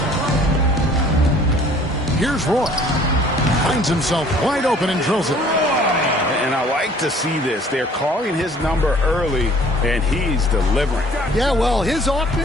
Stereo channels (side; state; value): both; normal; correlation 0.54